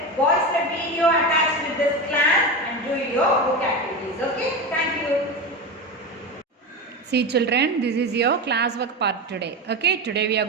watch the video attached with this class and do your book activities. Okay, thank you. See children, this is your classwork part today. Okay, today we are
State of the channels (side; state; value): both; normal; correlation 0.21